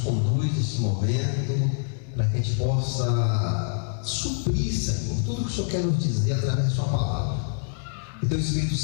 nesse momento para que a gente possa suprir, Senhor, tudo que o Senhor quer nos dizer através da Sua palavra. Que Teu Espírito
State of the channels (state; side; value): silent; right; digital silence